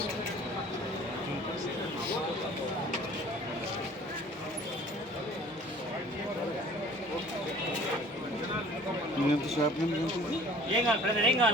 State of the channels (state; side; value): normal; both; correlation 0.49